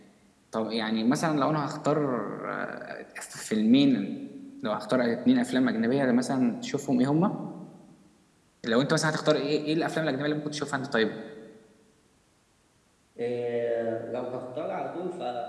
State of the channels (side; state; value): both; identical; correlation 1.00